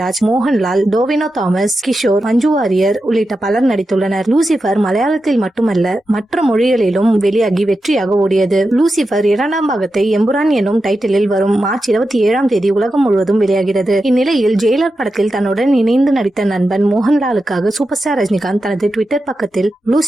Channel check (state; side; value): normal; both; correlation 0.90